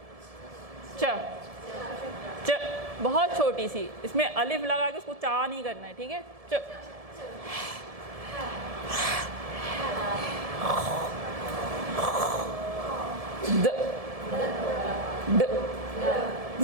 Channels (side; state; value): left; late; 1.7 ms